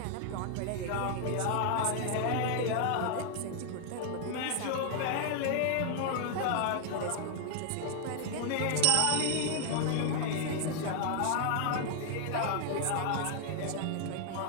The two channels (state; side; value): different; both; correlation 0.00